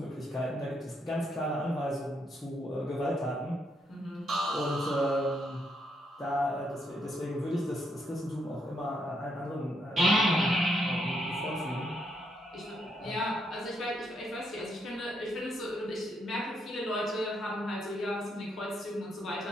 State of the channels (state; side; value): normal; both; correlation 0.76